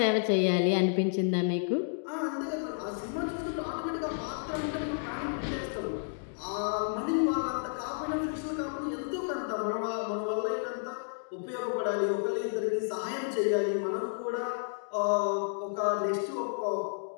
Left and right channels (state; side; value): silent; right; digital silence